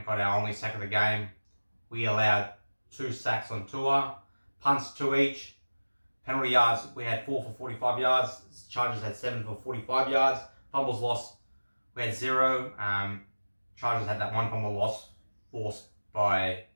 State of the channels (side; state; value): both; inverted; correlation -1.00